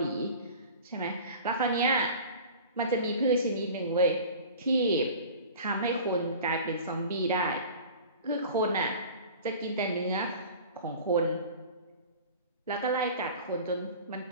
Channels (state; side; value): inverted; both; correlation -0.40